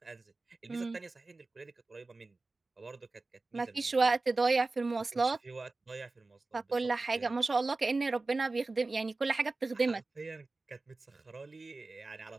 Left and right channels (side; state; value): left; quieter; 3.5 dB